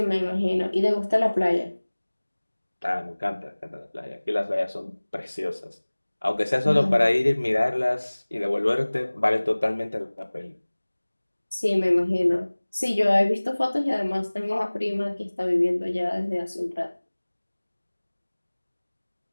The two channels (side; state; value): both; inverted; correlation -1.00